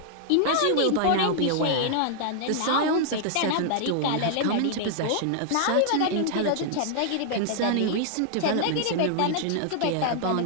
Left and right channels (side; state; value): both; different; correlation -0.01